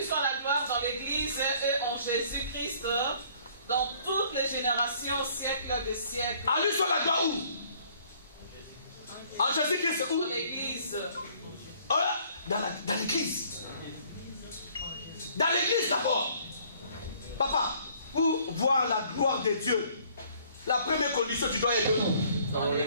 soit la gloire dans l'Église et en Jésus-Christ, dans toutes les générations, siècles des siècles. À lui soit la gloire où? En Jésus-Christ où? Dans l'Église. Dans l'Église. Dans l'Église d'abord. Papa, pour voir la gloire de Dieu, la première condition, tu dois être dans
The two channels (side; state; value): both; inverted; correlation -0.59